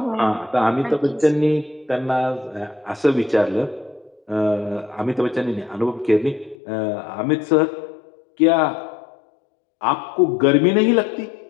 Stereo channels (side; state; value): right; drops out; at 6.6 s